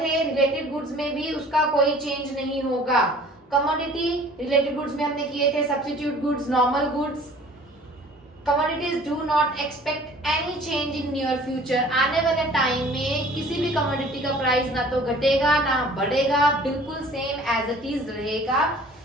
रिलेटेड गुड्स में भी उसका कोई चेंज नहीं होगा. कमोडिटी रिलेटेड गुड्स में हमने किए थे substitute goods, normal goods. Commodities do not expect any change in near future. आने वाले टाइम में किसी भी कमोडिटी का प्राइस ना तो घटेगा ना बढ़ेगा, बिल्कुल सेम एज इट इज रहेगा.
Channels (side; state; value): both; normal; correlation 0.49